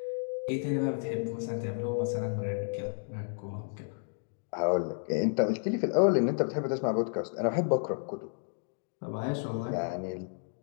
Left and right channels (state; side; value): silent; right; digital silence